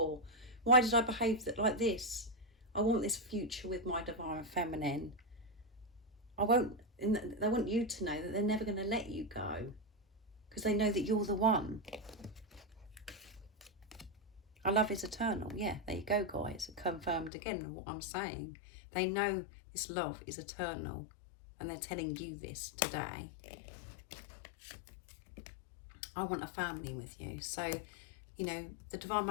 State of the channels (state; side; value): drops out; right; at 17.3 s